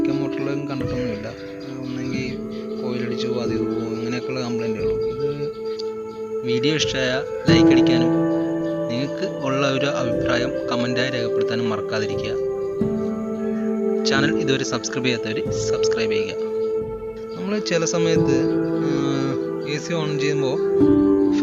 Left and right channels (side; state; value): both; identical; correlation 1.00